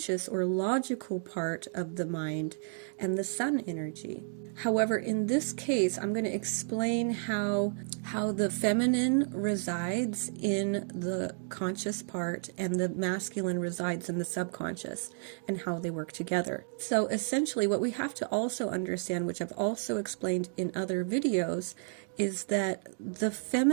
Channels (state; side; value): silent; left; 57 dB below the other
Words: or logical part of the mind and the sun energy. However, in this case, I'm going to explain how the feminine resides in the conscious part and the masculine resides in the subconscious and how they work together. So essentially what we have to also understand, which I've also explained in other videos, is that the